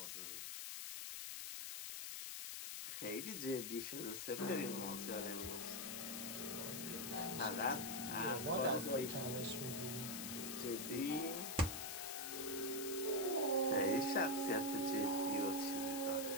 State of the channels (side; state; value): left; noise; hiss, 5 dB below the sound